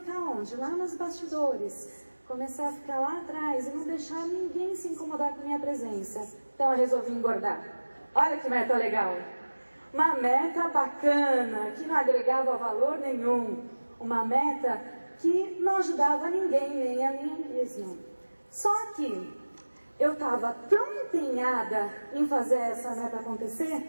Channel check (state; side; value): inverted; both; correlation -1.00